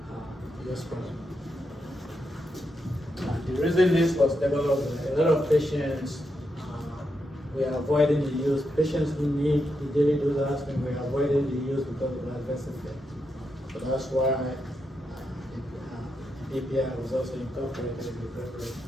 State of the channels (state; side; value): normal; both; correlation 0.84